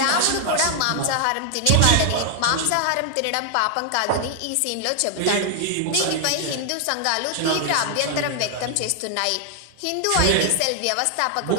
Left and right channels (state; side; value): different; both; correlation 0.00